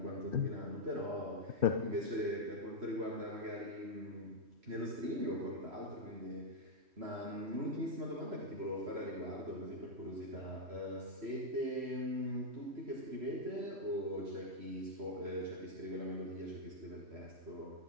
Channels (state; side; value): late; left; 3.1 ms